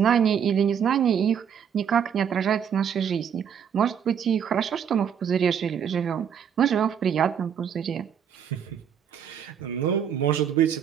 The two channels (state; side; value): quieter; left; 8.0 dB